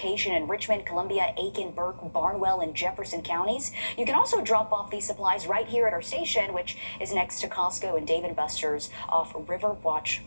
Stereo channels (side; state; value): both; inverted; correlation -1.00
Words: in Richmond, Columbia, Aiken, Burke, Barnwell, and Jefferson counties. You can also drop off these supplies right here at our station, which is next to Costco and Dave & Buster's off Riverwatch